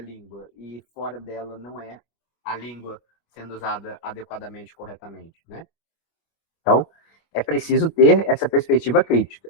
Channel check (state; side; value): late; right; 25 ms